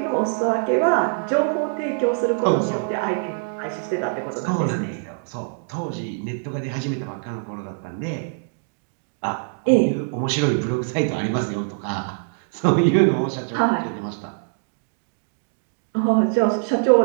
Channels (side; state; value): left; silent; digital silence